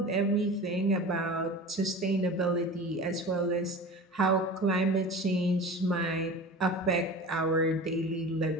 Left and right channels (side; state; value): both; normal; correlation 0.35